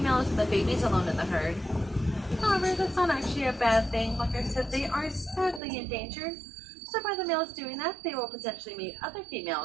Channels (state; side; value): drops out; left; at 5.6 s